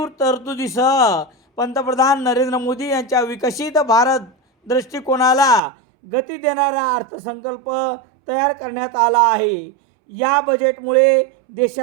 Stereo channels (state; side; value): drops out; left; at 5.6 s